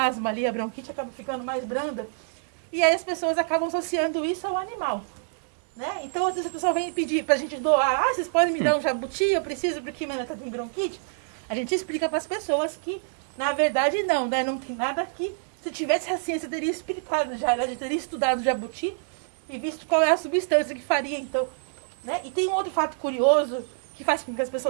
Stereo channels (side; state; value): left; silent; digital silence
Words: asma ali, a bronquite acaba ficando mais branda. E aí as pessoas acabam associando isso ao animal. Né? Então, às vezes a pessoa vem pedir pra gente doar, vocês podem me dar um jabuti, eu preciso porque minha neta tem bronquite. A gente explica para as pessoas que, na verdade, não, né? Não tem nada aqui. Se tivesse a ciência, teria explicado já, né? Teria estudado o jabuti e visto qual é a substância que faria, então. Né? E tem um outro fato curioso que faz com que as